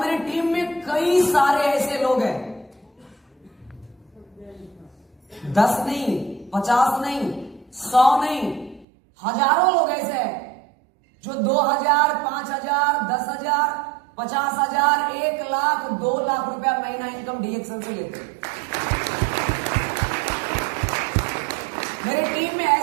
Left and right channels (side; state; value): left; drops out; at 8.8 s